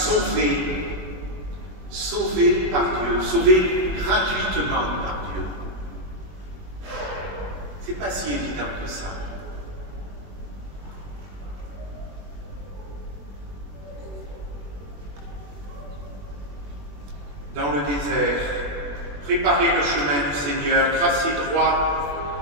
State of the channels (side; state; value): left; late; 21 ms